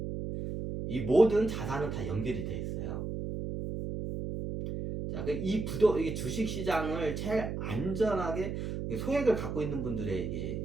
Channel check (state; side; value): noise; right; hum, 4 dB below the sound